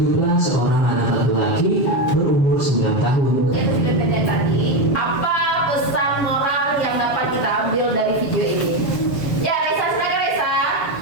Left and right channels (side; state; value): right; late; 7.4 ms